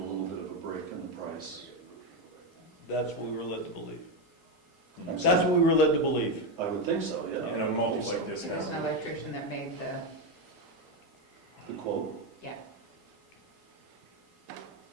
little bit of a break in the price. That's what we were led to believe. I'm That's sorry. what we were led to believe. I would think so, yeah. And a multi like this There's has. an electrician that made The quote. yeah.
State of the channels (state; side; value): normal; both; correlation 0.09